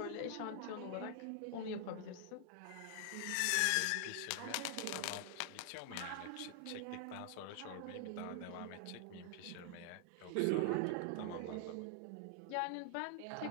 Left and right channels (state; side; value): different; both; correlation 0.00